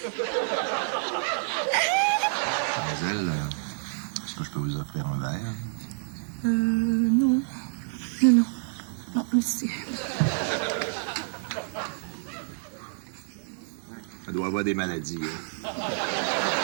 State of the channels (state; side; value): silent; left; digital silence